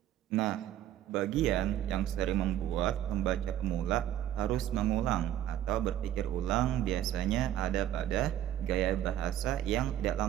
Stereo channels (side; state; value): left; quieter; 11.8 dB